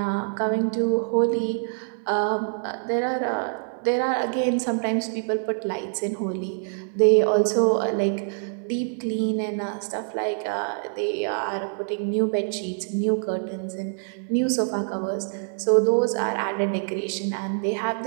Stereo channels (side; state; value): left; silent; digital silence